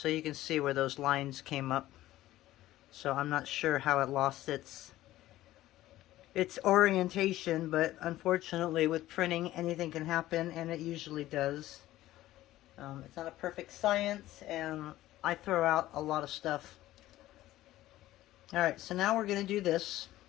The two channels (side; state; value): right; quieter; 15.3 dB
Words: you can see where those lines came up. So I'm not sure how it lost its orientation, but unfortunately with printing anything can happen, and it usually does. It's not a perfect science, and I throw out a lot of stuff. Alright, so now we're going to do this.